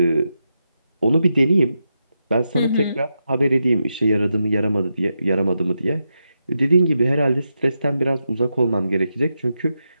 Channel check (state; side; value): inverted; both; correlation -0.87